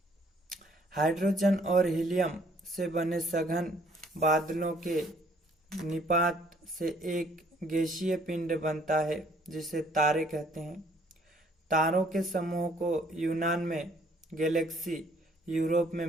हाइड्रोजन और हीलियम से बने सघन बादलों के निपात से एक गैसीय पिंड बनता है, जिसे तारे कहते हैं। तारों के समूह को यूनान में गैलेक्सी, यूरोप में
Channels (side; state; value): both; normal; correlation 0.61